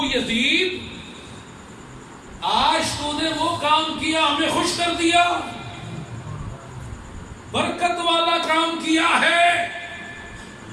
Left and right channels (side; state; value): both; identical; correlation 1.00